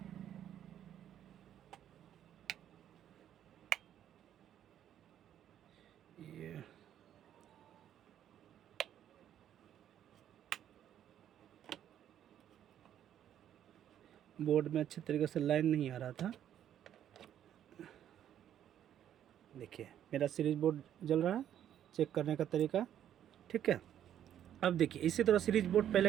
ये बोर्ड में अच्छे तरीके से लाइन नहीं आ रहा था। देखिए मेरा सीरीज बोर्ड जल रहा है, चेक करने का तरीका ठीक है। अब देखिए इसी तरह सीरीज बोर्ड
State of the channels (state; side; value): quieter; left; 10.5 dB